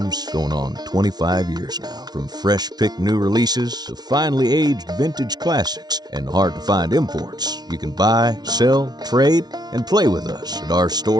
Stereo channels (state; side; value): late; left; 0.19 ms